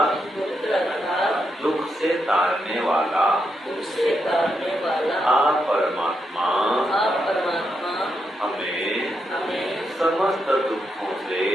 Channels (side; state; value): both; normal; correlation 0.82